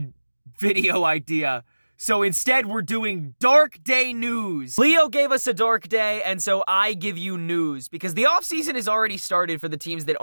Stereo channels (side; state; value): both; inverted; correlation -1.00